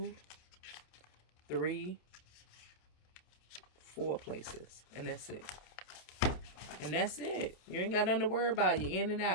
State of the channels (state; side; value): late; right; 27 ms